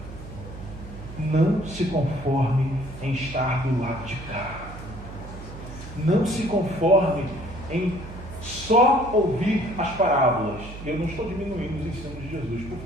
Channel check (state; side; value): noise; right; hum, 13 dB below the sound